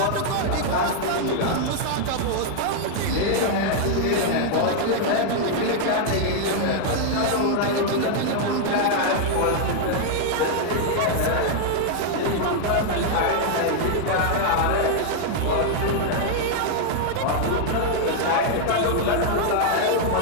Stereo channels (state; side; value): different; both; correlation -0.01